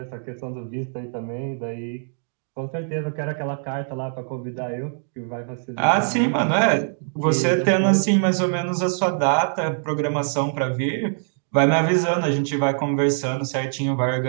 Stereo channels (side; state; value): left; silent; digital silence